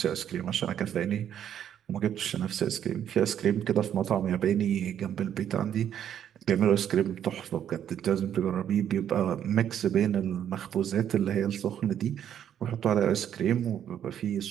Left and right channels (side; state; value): left; quieter; 9.7 dB